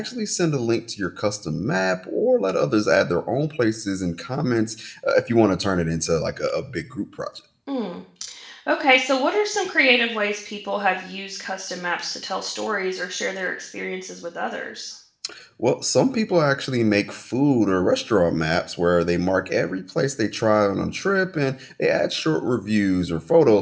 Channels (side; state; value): both; identical; correlation 1.00